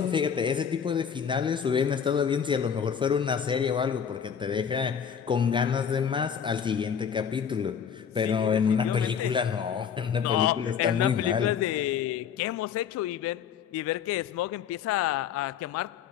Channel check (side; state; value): right; quieter; 7.6 dB